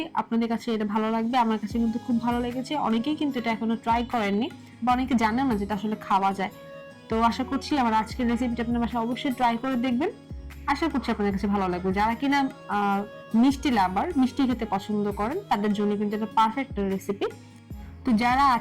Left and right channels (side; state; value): both; identical; correlation 1.00